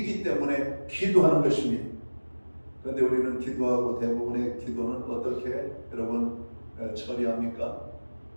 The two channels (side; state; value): both; inverted; correlation -1.00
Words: 때문에 기도하는 것입니다. 그런데 우리는 기도하고 대부분의 기도는 어떻게 여러분 처리합니까?